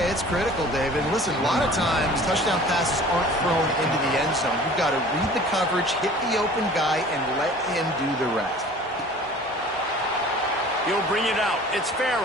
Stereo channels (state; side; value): normal; both; correlation 0.46